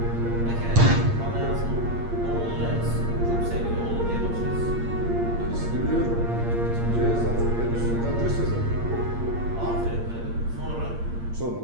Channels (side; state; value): left; late; 8.6 ms